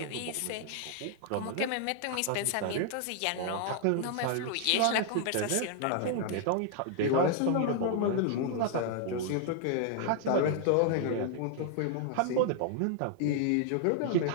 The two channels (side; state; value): both; different; correlation 0.00